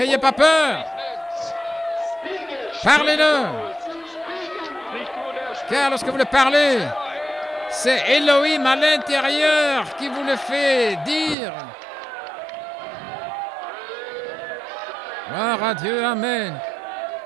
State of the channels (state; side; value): drops out; left; at 11.4 s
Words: pas peur. Parlez-le. Car lorsque vous le parlez, c'est Elohim à l'intérieur qui vous le fait dire. Gloire à Dieu, amen.